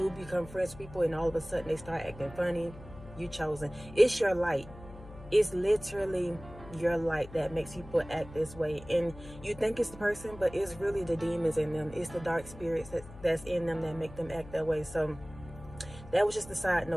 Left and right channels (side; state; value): left; noise; hum, 17 dB below the sound